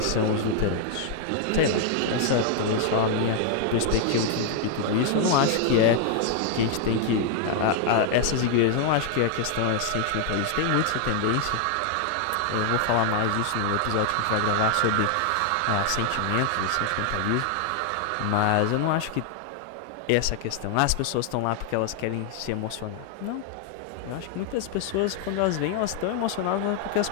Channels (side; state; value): both; different; correlation 0.00